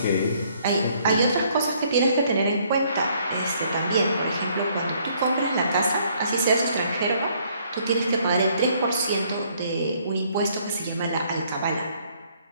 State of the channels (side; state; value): both; inverted; correlation -0.65